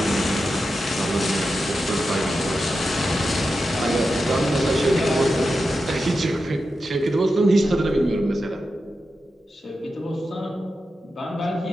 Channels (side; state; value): both; normal; correlation 0.90